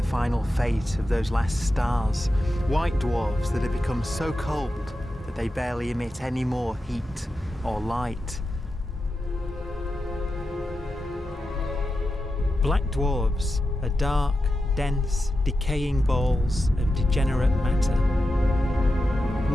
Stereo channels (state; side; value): normal; both; correlation 0.90